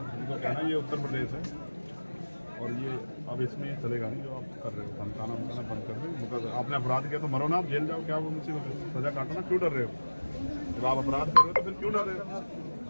इनको कहना ये उत्तर प्रदेश है और ये अब इसमें ये चलेगा नहीं जो आप कर रहे हो, धमकाना बंद कर दो। आपने अपराध किया तो मरो ना, आप जेल जाओ, क्या वो मुसीबत है, सजा काटो ना, क्यों डर रहे हो? जब आप अपराध कर रहे हो तो फिर क्यों डर रहे हो?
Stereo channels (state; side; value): inverted; both; correlation -1.00